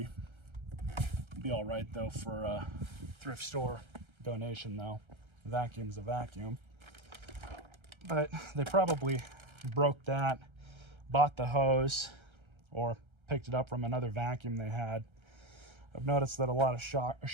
Be all right though for a thrift store donation though. Vacuum's a vacuum. But they probably broke that, bought the hose, or picked it up from another vacuum they had. I've noticed that a lot of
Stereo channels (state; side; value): late; left; 1.3 ms